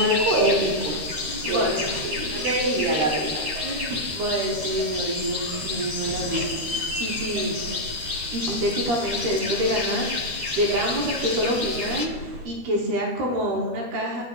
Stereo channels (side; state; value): left; late; 12 ms